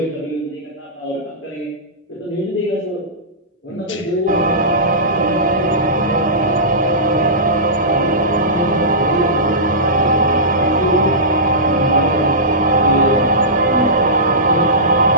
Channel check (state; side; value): normal; both; correlation -0.18